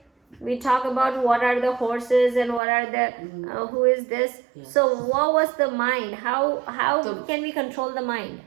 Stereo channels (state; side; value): drops out; left; at 2.6 s